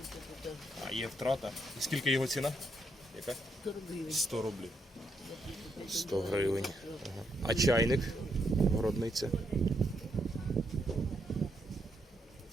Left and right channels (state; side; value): normal; both; correlation 0.77